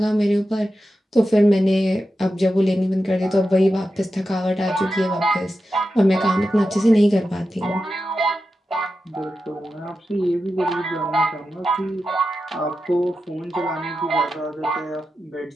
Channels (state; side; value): normal; both; correlation 0.90